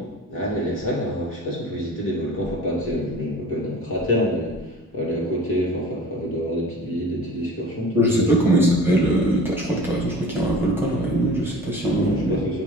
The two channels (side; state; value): both; normal; correlation 0.42